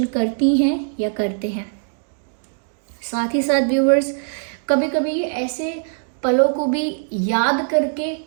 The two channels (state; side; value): silent; left; digital silence